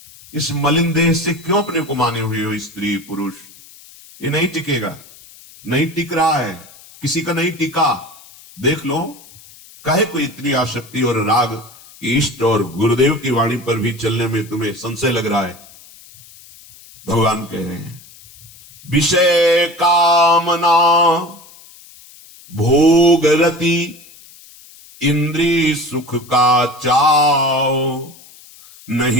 इस मलिन देह से क्यों अपने को माने हुए हो स्त्री पुरुष? ये नहीं टिकेगा, नहीं टिक रहा है, किसी का नहीं टिका। देख लो, काहे को इतनी आसक्ति और राग कि इष्ट और गुरुदेव की वाणी पर भी चलने में तुम्हें संशय लग रहा है। भगवान कह रहे हैं, विषय कामना भोग रति इंद्रिय सुख का चाव,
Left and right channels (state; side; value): noise; left; hiss, 22 dB below the sound